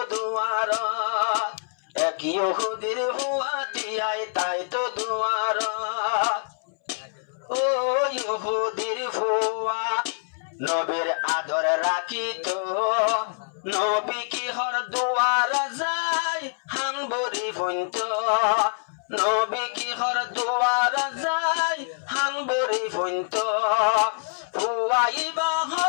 দুয়ারত এক ইহুদির ফুয়াতিয়ায় তাই তো দুয়ারত ও ইহুদির ফুয়া নবীর আদর রাখিত নবী কি হর দুয়ার যায় হানবরি ফইন্ত নবী কি হর দুয়ার যায় হানবরি ফইন্ত ফুয়াইবা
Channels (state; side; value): silent; right; 61 dB below the other